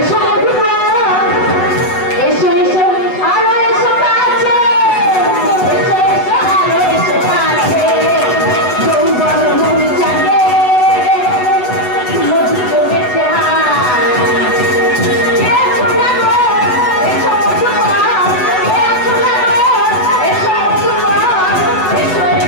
মধু গো, এসো এসো আরো এসো কাছে, এসো এসো আরো এসো কাছে, যৌবন মন জাগে মধু জমেছে কে আছো না গো? এসো মধু গো, কে আছো না গো? এসো মধু গো, এসো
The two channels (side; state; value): right; late; 8.1 ms